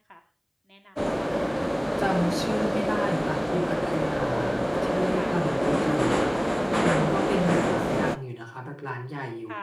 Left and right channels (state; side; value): identical; both; correlation 1.00